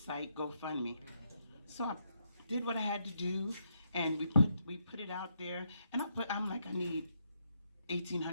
GoFundMe. So I did what I had to do, and we put it out there. And I'm like, I need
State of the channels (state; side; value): inverted; both; correlation -0.78